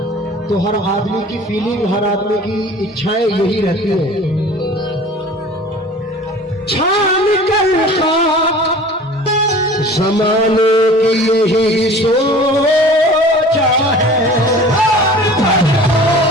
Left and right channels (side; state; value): both; normal; correlation 0.43